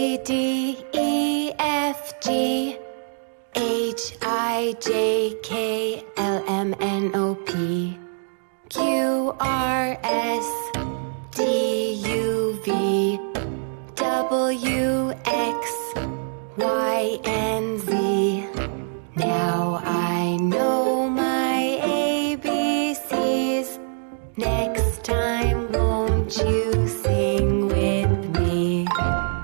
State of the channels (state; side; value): silent; left; 63 dB below the other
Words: D, E, F, G, H, I, J, K, L, M, N, O, P, Q, R, S, T, U, V, W, X, Y, and Z. Now I know my ABCs. Next time, won't you sing with me?